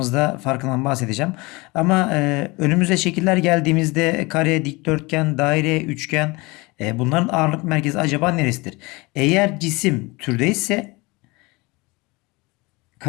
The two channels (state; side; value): quieter; right; 24.5 dB